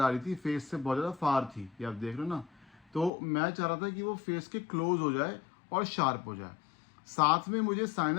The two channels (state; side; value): drops out; right; at 3.1 s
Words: आ रही थी, फेस से बहुत ज़्यादा फार थी, ये आप देख रहे हो ना। तो मैं चाह रहा था कि वो फेस के क्लोज हो जाए और शार्प हो जाए। साथ में मुझे